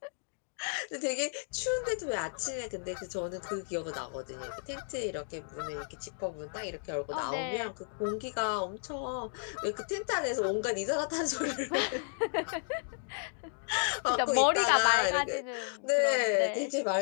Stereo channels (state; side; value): silent; right; digital silence